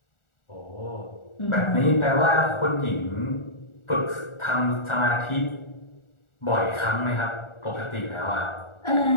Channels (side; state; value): right; late; 1.4 ms